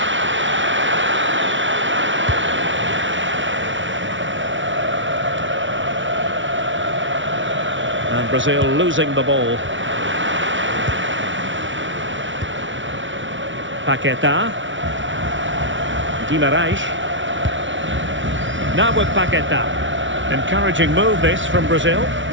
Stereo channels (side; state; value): left; late; 0.56 ms